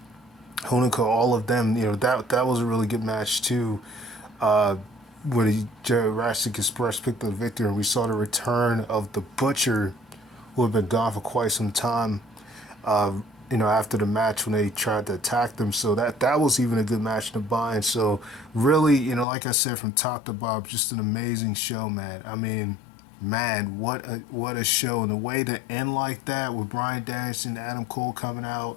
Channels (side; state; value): right; drops out; at 19.2 s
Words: Honico, all of them. That was a really good match too. Where the Jurassic Express picked up the victory, and we saw the return of the Butcher, who had been gone for quite some time. After the match when they tried to attack them. So that was even a good match to buy. And so really, like I said, from top to bottom, just an amazing show, man. I mean, man, what a show. And the way to end like that with Bryan Danielson, Adam Cole coming out,